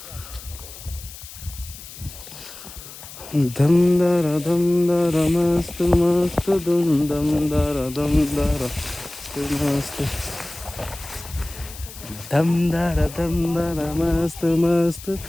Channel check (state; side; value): noise; left; hiss, 15 dB below the sound